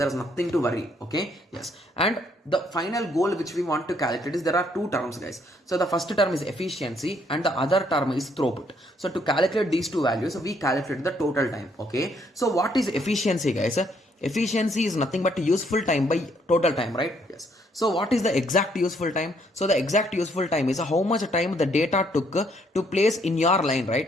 is nothing to worry. Okay? Yes. And the final goal which we want to calculate is there are 2 terms, guys. So the first term is efficiency and the other term is throughput. So to calculate these 2 values, we calculate the total time. Okay? So what is efficiency, guys? Efficiency is nothing but useful time by total time, right? Yes. So what is the exact useful time? So the exact useful time is how much time the data took to place in your line,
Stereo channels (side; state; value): both; normal; correlation 0.69